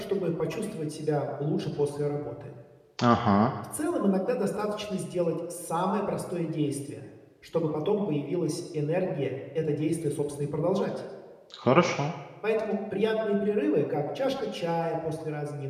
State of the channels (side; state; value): both; identical; correlation 1.00